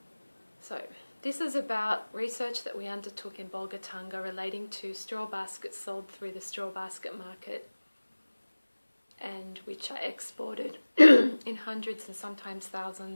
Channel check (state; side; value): inverted; both; correlation -1.00